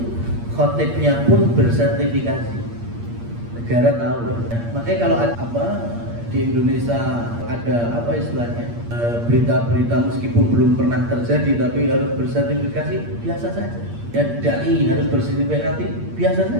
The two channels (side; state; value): left; late; 8.6 ms